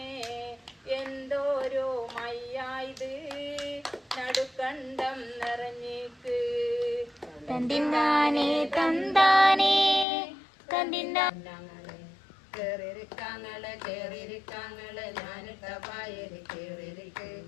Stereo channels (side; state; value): right; drops out; at 10.1 s